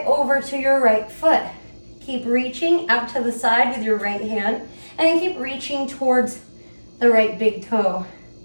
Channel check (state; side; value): inverted; both; correlation -1.00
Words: over to your right foot. Keep reaching out to the side with your right hand, and then keep reaching towards the right big toe.